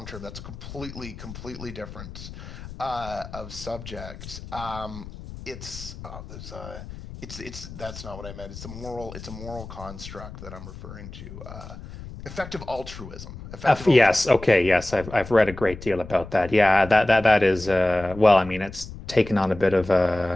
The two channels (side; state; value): left; noise; rumble, 13 dB below the sound